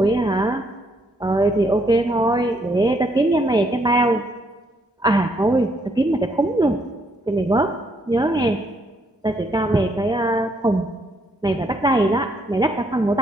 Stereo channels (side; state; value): both; normal; correlation 0.72